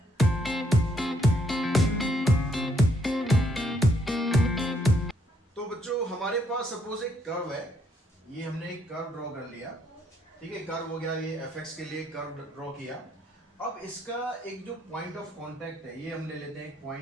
तो बच्चों, हमारे पास सपोज एक कर्व है, ये हमने एक कर्व ड्रॉ कर लिया, ठीक है। कर्व हो गया, ये fx के लिए कर्व ड्रॉ किया। अब इसका एक जो पॉइंट ऑफ कांटेक्ट है, ये हम ले लेते हैं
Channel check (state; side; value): normal; both; correlation 0.71